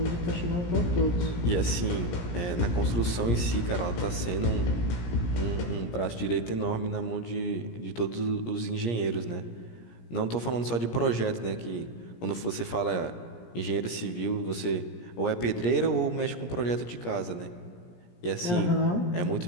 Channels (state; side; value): late; right; 17 ms